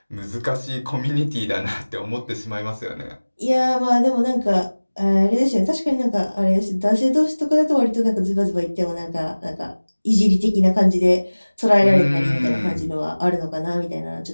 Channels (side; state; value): both; inverted; correlation -1.00